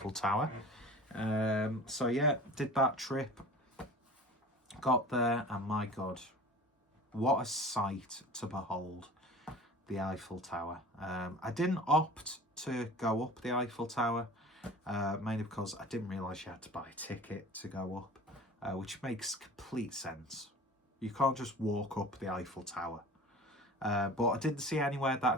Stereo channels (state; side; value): normal; both; correlation 0.40